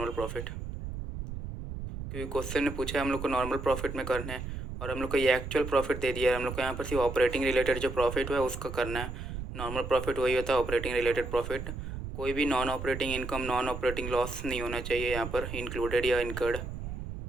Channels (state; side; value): noise; right; rumble, 7 dB below the sound